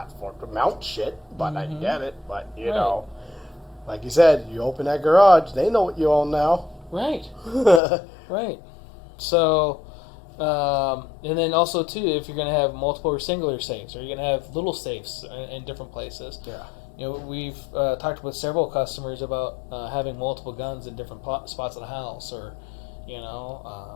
to mount shit, but I get it. But, you Right. know, like you said, you open that garage, they know what you own now. Right. Right. So, and then also, too, if you're going to have multiple or singular safes, or you're going to have little safes in different places, we've talked with several customers about having multiple guns in different spots of the house, or,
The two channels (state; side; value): drops out; right; at 7.8 s